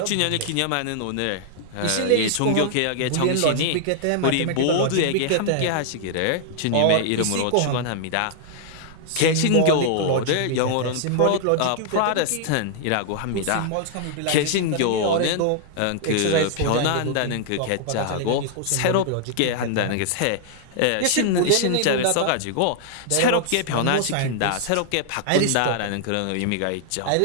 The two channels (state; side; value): different; both; correlation -0.01